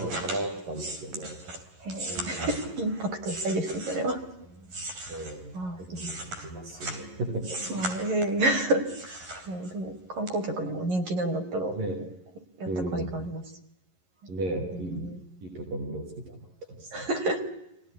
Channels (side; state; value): left; late; 11 ms